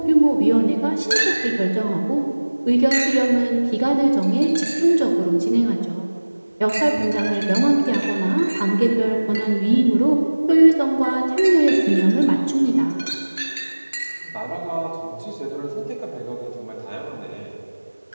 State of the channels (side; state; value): both; inverted; correlation -1.00